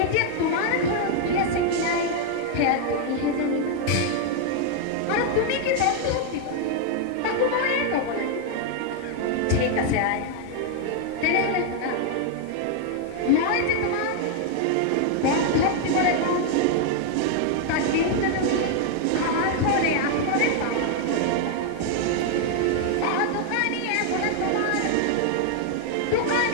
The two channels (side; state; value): both; different; correlation 0.00